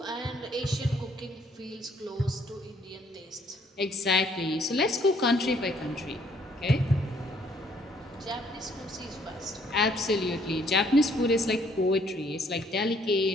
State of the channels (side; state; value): both; normal; correlation 0.64